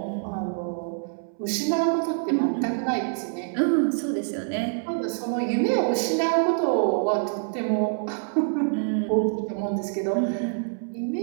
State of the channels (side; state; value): left; silent; 61 dB below the other